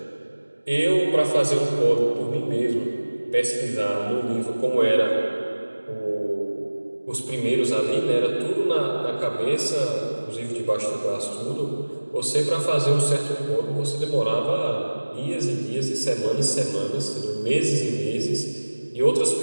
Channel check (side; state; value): both; inverted; correlation -1.00